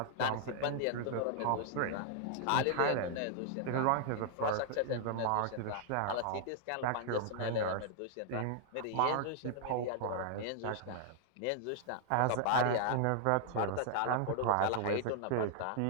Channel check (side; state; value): both; different; correlation -0.01